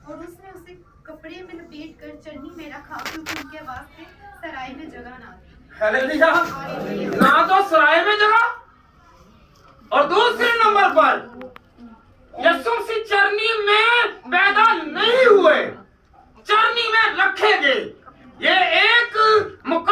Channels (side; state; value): both; identical; correlation 1.00